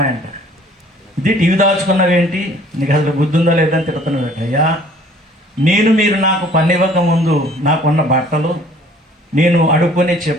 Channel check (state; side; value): normal; both; correlation 0.55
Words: ఇది టీవీ దాచుకున్నవేంటి, నీకు అసలు బుద్ధి ఉందా లేదని తిడుతున్నాడట. అయ్యా మీరు నాకు పని ఇవ్వక ముందు నాకున్న బట్టలు, నేను అడుక్కునే